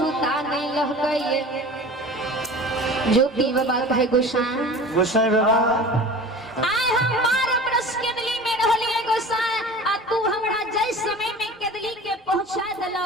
नहीं लह गइए ज्योति बाबा कहे गोसाई बाबा आय हम 12 बरस केदली में रहलिए गोसाई आ तू हमरा जय समय में केदली के पहुंचा देलो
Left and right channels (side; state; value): both; normal; correlation 0.39